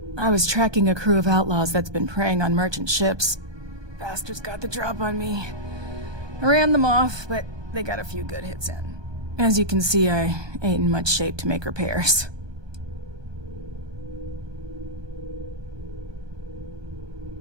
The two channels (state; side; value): late; left; 1.2 ms